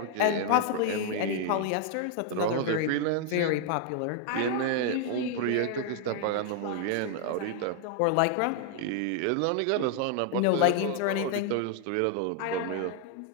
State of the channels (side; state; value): both; different; correlation 0.00